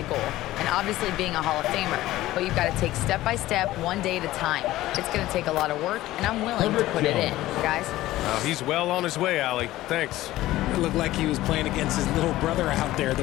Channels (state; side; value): quieter; right; 16.0 dB